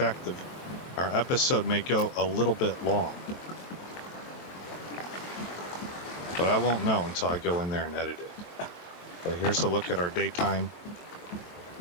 our episode may go a little bit long. But I won't know until I go in there and edit it. But here's a look at our daytime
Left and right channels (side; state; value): right; late; 23 ms